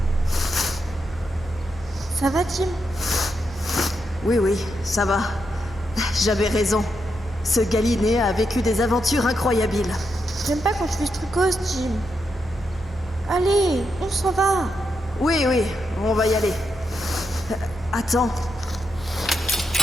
Ça va, Tim? Oui, ça va. J'avais raison. Ce Galinéen a vécu des aventures incroyables. J'aime pas quand tu fais ce trucos, Tim. Allez, on s'en va. Oui, on va y aller. Attends.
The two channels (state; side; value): normal; both; correlation 0.84